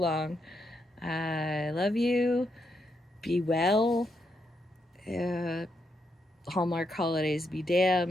I love you. Be well. Hallmark holidays be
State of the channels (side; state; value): both; normal; correlation 0.80